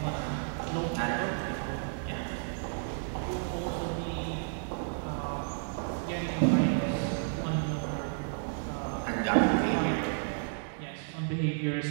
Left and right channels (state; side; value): silent; left; digital silence